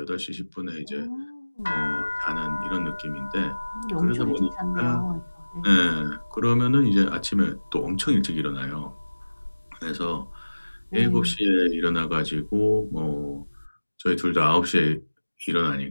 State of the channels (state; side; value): inverted; both; correlation -1.00